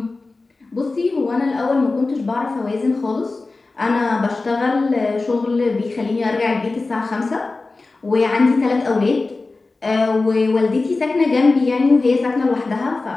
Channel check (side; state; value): right; quieter; 3.5 dB